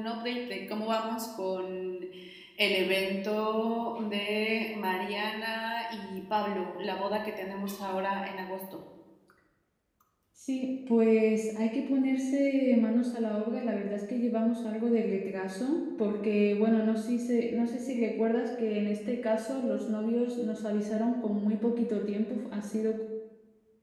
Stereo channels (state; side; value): identical; both; correlation 1.00